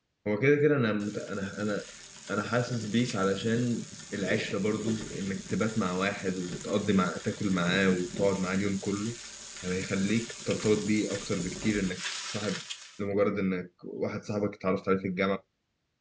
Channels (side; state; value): both; identical; correlation 1.00